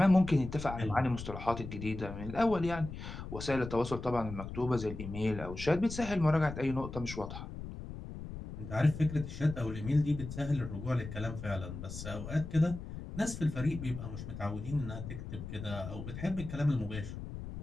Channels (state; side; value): noise; left; rumble, 9 dB below the sound